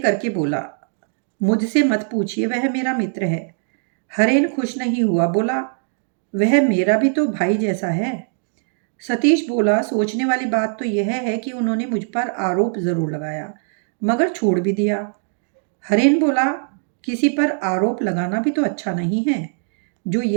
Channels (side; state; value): left; silent; digital silence